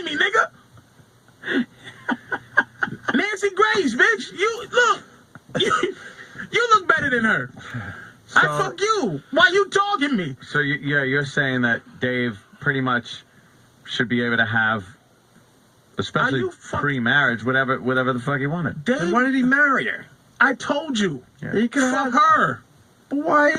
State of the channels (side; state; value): both; identical; correlation 1.00